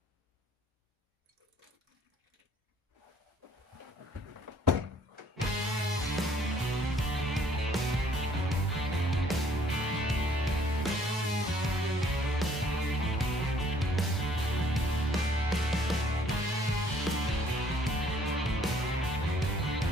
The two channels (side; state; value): both; normal; correlation 0.61